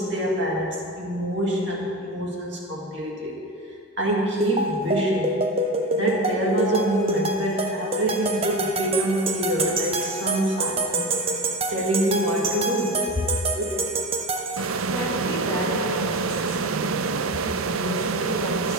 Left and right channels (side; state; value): both; normal; correlation 0.23